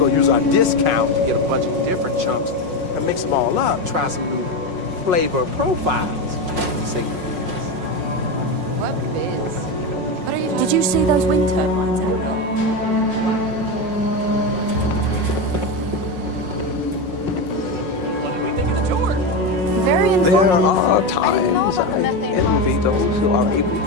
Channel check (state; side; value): late; left; 5.5 ms